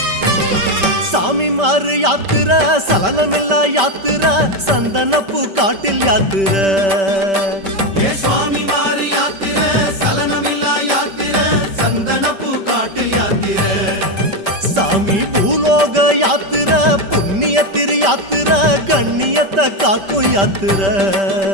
சாமி மாறு யாத்திர சலனமில்லா யாத்திர சந்தனப்பூ காட்டில் யாத்திர ஏ சுவாமி வாரி யாத்திர சலனமில்லா யாத்திர சந்தனப்பூ காட்டில் யாத்திர சாமி பூலோக யாத்திர புண்ணிய திரு யாத்திர கண்ணியத்தை காக்கும் யாத்திர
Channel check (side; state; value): left; late; 5.1 ms